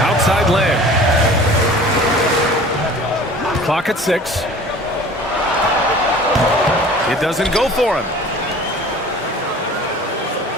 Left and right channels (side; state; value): both; normal; correlation 0.45